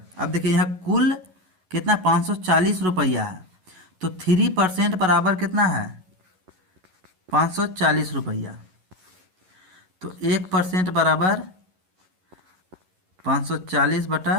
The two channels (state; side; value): late; left; 11 ms